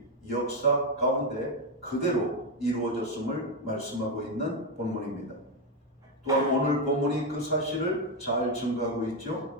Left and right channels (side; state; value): both; normal; correlation 0.07